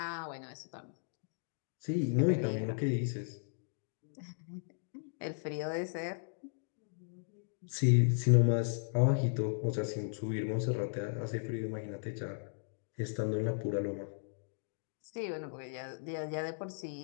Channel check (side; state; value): right; silent; digital silence